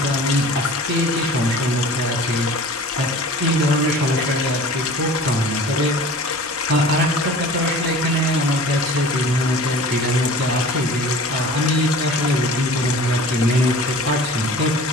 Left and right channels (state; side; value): normal; both; correlation 0.42